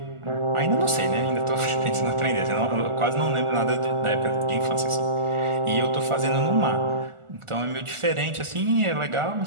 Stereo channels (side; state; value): left; late; 1.4 ms